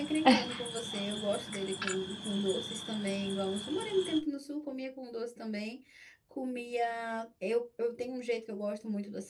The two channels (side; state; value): both; identical; correlation 1.00